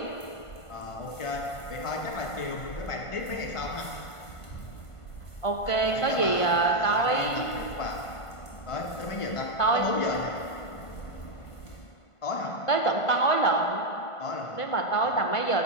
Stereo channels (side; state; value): right; late; 1.5 ms